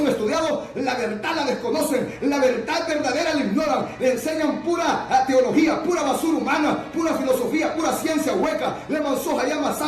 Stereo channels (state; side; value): identical; both; correlation 1.00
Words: estudiados, la verdad la desconocen, la verdad verdadera la ignoran, le enseñan pura teología, pura basura humana, pura filosofía, pura ciencia hueca, le Mansoja llama